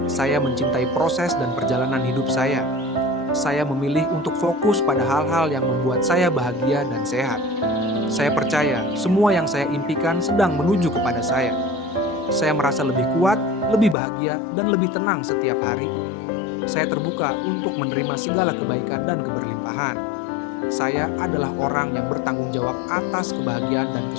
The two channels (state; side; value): drops out; right; at 14.0 s